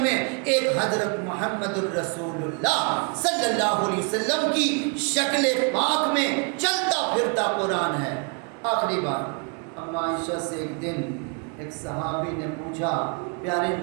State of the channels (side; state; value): left; quieter; 36.2 dB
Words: میں، ایک حضرت محمد الرسول اللہ صلی اللہ علیہ وسلم کی شکل پاک میں چلتا پھرتا قرآن ہے۔ آخری بات، اما عائشہ سے ایک دن ایک صحابی نے پوچھا پیارے